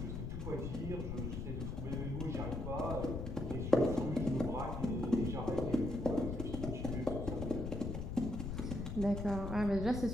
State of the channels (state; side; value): noise; left; rumble, 4 dB below the sound